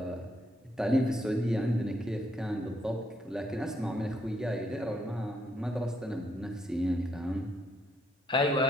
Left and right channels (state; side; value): normal; both; correlation 0.74